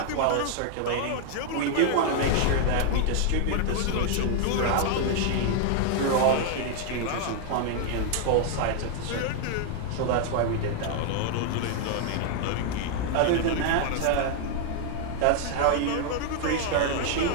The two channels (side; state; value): both; different; correlation 0.00